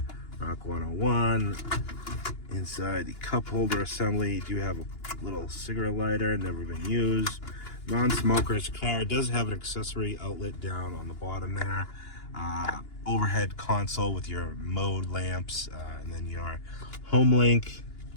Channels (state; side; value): late; right; 2.9 ms